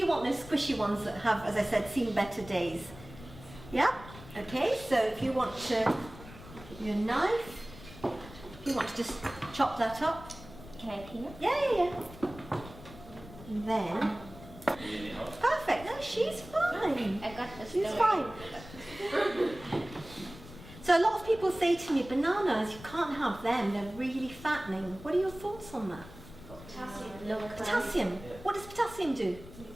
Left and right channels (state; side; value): noise; left; rumble, 16 dB below the sound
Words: want those squishy ones that have, as I said, seen better days. Yeah? Okay, so if you want to, give you a knife, if you want to just chop that up. Can I clean it? Yeah. And then, perfect, no, she's fine. I got this. She's fine. So a lot of people say to me, bananas, you can't have them, they're really fattening. What are your thoughts on that? Potassium. Potassium. What does potassium do?